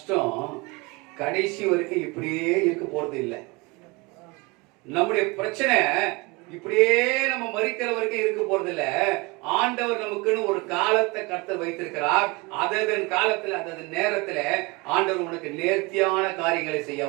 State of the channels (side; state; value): left; quieter; 25.7 dB